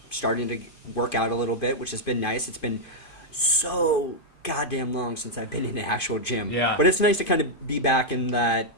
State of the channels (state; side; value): late; right; 2.5 ms